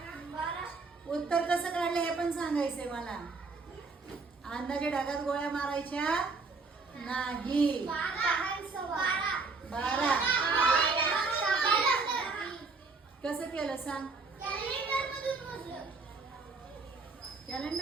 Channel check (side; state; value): left; quieter; 4.1 dB